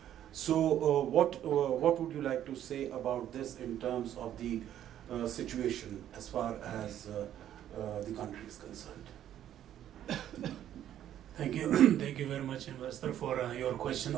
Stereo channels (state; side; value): quieter; left; 11.2 dB